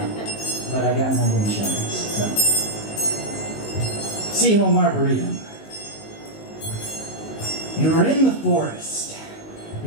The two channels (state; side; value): late; right; 19 ms